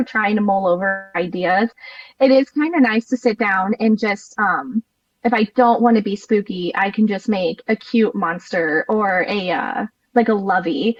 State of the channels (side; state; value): both; identical; correlation 1.00